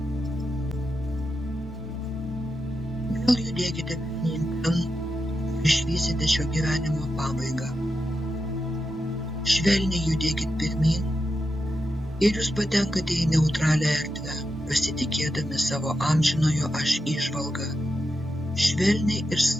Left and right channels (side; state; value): both; normal; correlation 0.88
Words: vėl judėkite pirmyn ten ir išvysite šio gyvenimo pabaigą. Švelniai judėkit pirmyn ir jūs patenkate į neutralią erdvę, pasitikėdami savo amžinojo aš įžvalgą. Švelniai ir